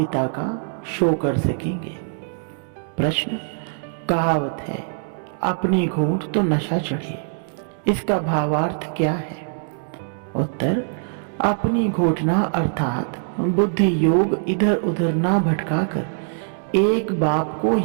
का शो कर सकेंगे। प्रश्न, कहावत है अपनी घूंट तो नशा चढ़े, इसका भावार्थ क्या है? उत्तर, अपनी घोटना अर्थात बुद्धि योग इधर उधर ना भटकाकर एक बाप को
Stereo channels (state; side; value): silent; left; digital silence